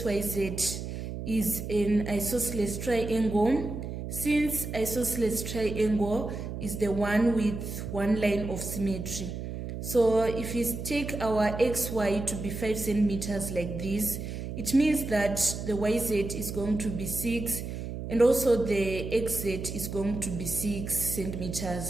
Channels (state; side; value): noise; right; hum, 6 dB below the sound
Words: is an isosceles triangle. Since isosceles triangle is the one with one line of symmetry. So if we take our XY to be 5 centimeters like this, it means that the YZ is going to be 6 and also the XZ is going to be 6